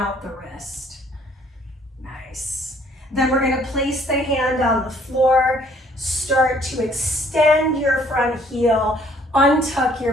the wrist. Nice. Then we're gonna place the hand on the floor, start to extend your front heel, untuck your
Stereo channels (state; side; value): normal; both; correlation 0.61